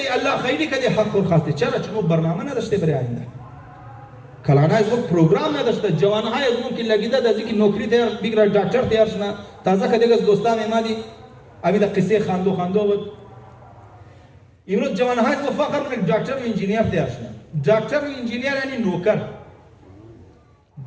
الله خیری کده حق خور خواسته چرا چون برنامه نداشته برای آینده کلانا از اون پروگرام نداشته جوانهای از اون که لگیده دازی که نوکری تیار بگیره دکتر تیار شنا تازه کدیگ از دوستان ایمادی امی دا قصه خاندو بود امروز جوانهای از فخر من دکتر و انجینیر تیار شنا دکتر و انجینیر یعنی نوکر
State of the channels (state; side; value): identical; both; correlation 1.00